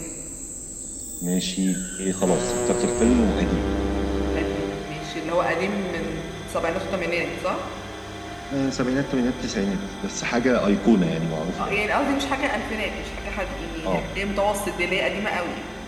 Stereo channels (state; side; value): identical; both; correlation 1.00